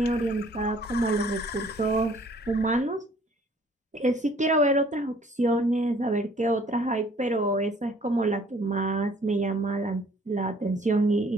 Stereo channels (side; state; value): both; normal; correlation 0.57